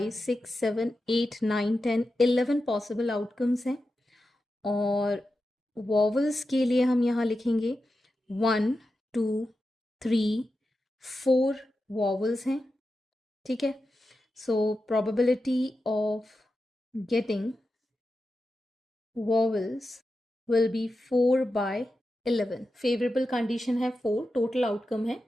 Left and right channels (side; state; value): both; normal; correlation 0.91